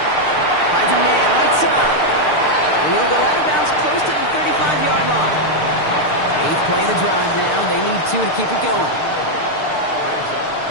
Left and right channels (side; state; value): right; late; 6.7 ms